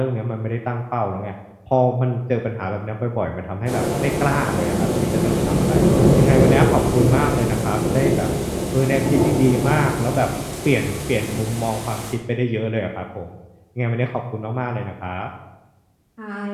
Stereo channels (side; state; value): both; identical; correlation 1.00